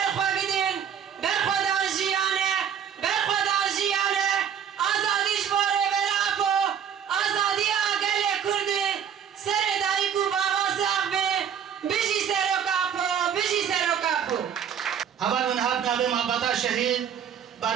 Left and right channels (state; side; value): quieter; left; 8.3 dB